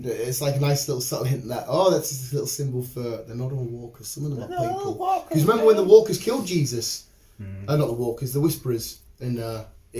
It's like a nice little subtle hint that that's just a little symbol for they're not all walkers. Some of them are people. Because remember when the walkers killed Jesus? Not the walkers, the Whisperers, and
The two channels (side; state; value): both; identical; correlation 1.00